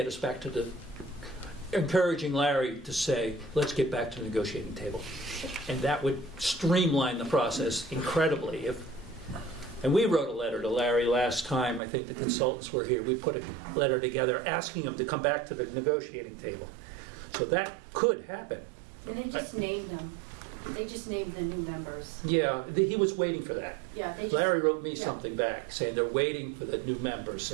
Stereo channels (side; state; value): left; drops out; at 11.8 s